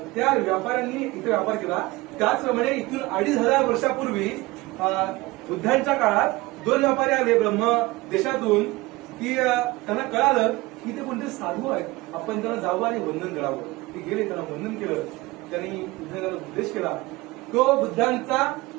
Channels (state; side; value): quieter; left; 21.1 dB